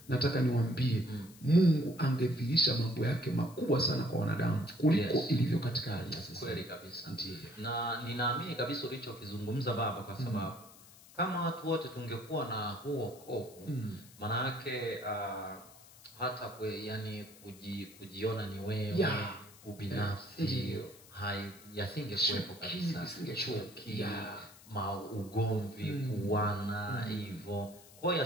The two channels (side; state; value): left; noise; hiss, 22 dB below the sound